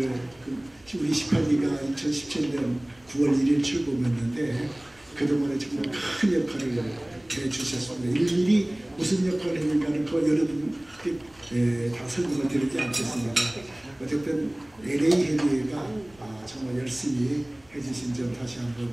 우리 18기가 2017년 9월 1일 출범했는데 그동안에 정말 큰 역할을 해주셨습니다. 일일이 무슨 역할을 했는가는 그 여러분께 다 설명을 드리지 않겠습니다. 어쨌든 LA 협의회가 정말 열심히 해주신 점 다시 한번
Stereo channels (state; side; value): noise; right; rumble, 29 dB below the sound